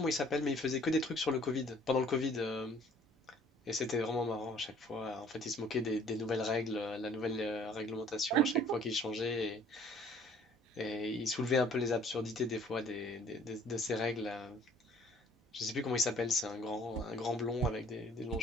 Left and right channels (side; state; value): both; normal; correlation 0.55